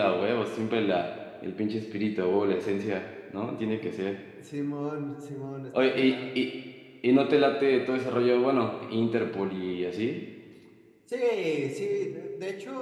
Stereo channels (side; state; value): both; identical; correlation 1.00